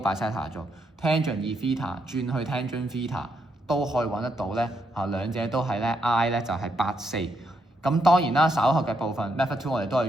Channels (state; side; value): normal; both; correlation 0.78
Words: bisector 做 tangent 2theta 轉去 tangent theta 都可以揾得到咧。兩者都係咧 I 咧就係84。咁當然啦，稍後嘅部分 method 2我哋都